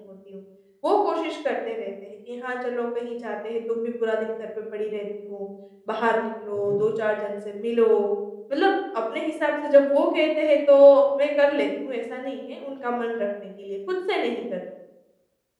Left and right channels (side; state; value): both; identical; correlation 1.00